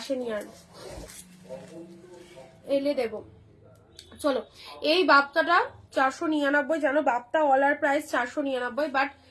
আর, এলে দেবো। চলো, এই বাপ্তাটা 499, জানো বাপ্তা অলার প্রাইস 499, বাট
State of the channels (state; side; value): identical; both; correlation 1.00